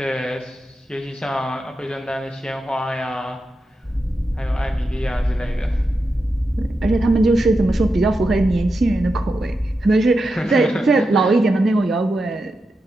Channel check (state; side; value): normal; both; correlation 0.88